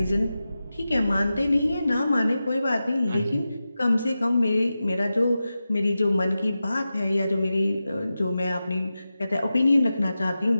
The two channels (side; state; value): both; inverted; correlation -0.93